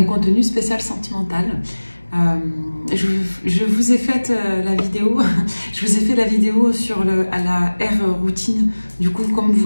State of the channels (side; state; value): both; inverted; correlation -1.00